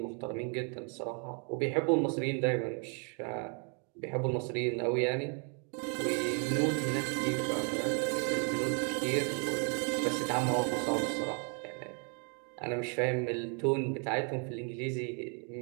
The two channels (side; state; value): left; quieter; 39.1 dB